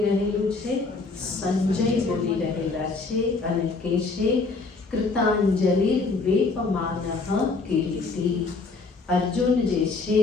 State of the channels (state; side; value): quieter; right; 4.0 dB